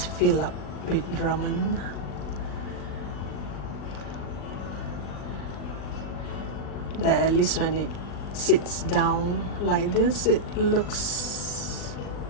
filled up with ramen. That at least when it sits down like this, it looks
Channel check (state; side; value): late; right; 39 ms